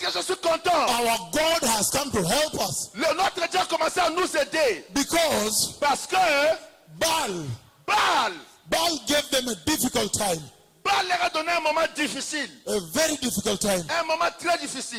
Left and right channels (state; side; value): identical; both; correlation 1.00